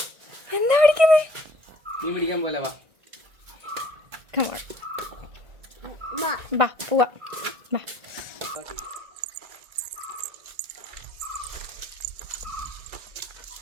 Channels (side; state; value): left; late; 1.6 ms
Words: എന്താ പിടിക്കുന്നേ? മീൻ പിടിക്കാൻ പോലെ വാ. ബാ പോവാ. ബാ.